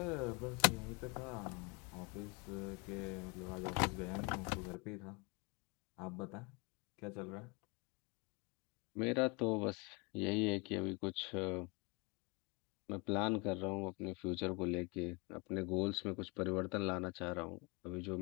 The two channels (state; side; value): quieter; right; 29.3 dB